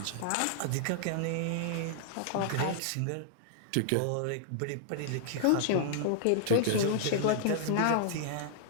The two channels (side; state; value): both; different; correlation -0.01